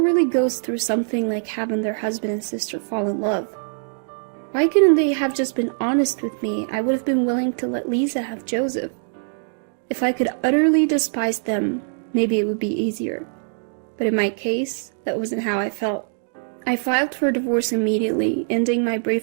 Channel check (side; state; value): left; silent; digital silence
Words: really goes through something like having their husband and sister fall in love? Why couldn't they have just been honest with me? I would have been willing to let Lisa have Joseph. If I could utterly despise them, maybe it would be easier. But in my case, that wasn't how I felt. I filed for divorce immediately, ending my